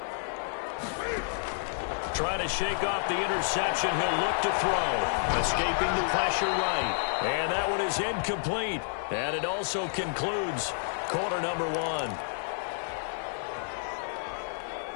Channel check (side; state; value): right; silent; 58 dB below the other